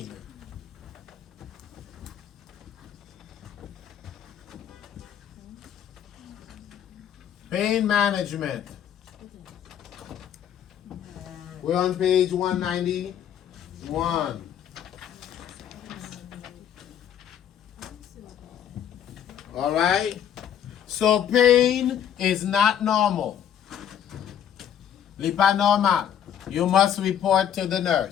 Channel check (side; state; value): right; quieter; 9.5 dB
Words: Pain management. We're on page 191. All right? So pain is not normal. Li pas normal. You must report to the